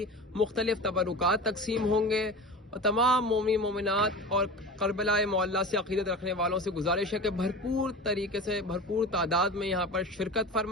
मुख्तलिफ तबरुकात तकसीम होंगे और तमाम मोमिन मोमिनात और करबला मोहल्ला से अक़ीदत रखने वालों से गुजारिश है कि भरपूर तरीके से भरपूर तादाद में यहाँ पर शिरकत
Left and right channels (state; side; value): normal; both; correlation 0.32